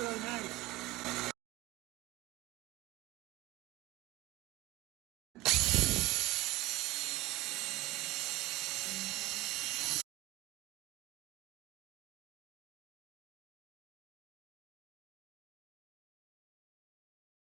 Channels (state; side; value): quieter; left; 18.3 dB